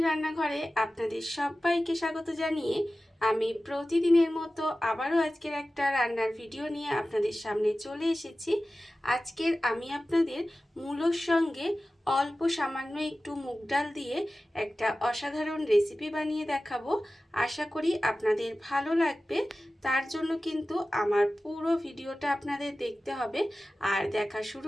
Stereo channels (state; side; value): normal; both; correlation 0.96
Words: আপনাদের সবাইকে স্বাগত জানিয়ে আমি প্রতিদিনের মতো আবারও আজকের একটা রান্নার ভিডিও নিয়ে আপনাদের সামনে চলে এসেছি। আজকের আমি আপনাদের মূলোর সঙ্গে অল্প সামান্য একটু মুগ ডাল দিয়ে একটা অসাধারণ রেসিপি বানিয়ে দেখাবো। আশা করি আপনাদের ভালো লাগবে। তার জন্য কিন্তু আমার পুরো ভিডিওটা আপনাদের দেখতে হবে। আর দেখা শুরু